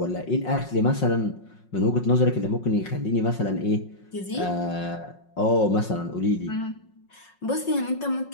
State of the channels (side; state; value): right; late; 5.5 ms